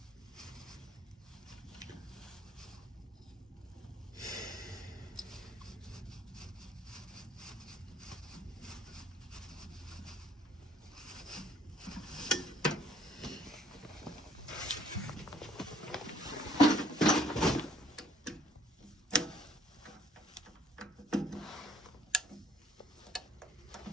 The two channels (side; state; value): both; normal; correlation 0.59